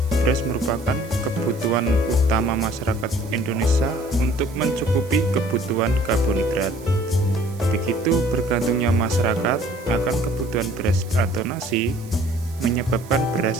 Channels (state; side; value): noise; right; hiss, 22 dB below the sound